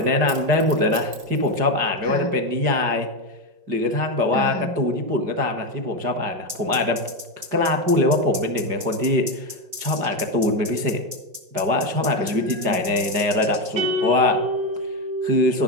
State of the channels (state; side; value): late; left; 5.2 ms